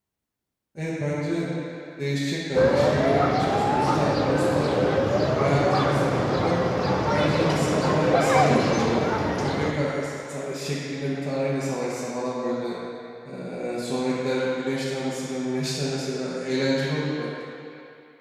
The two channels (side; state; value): both; identical; correlation 1.00